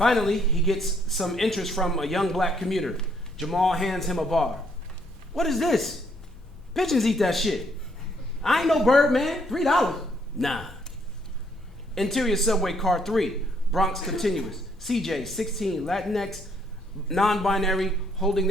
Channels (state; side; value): normal; both; correlation 0.69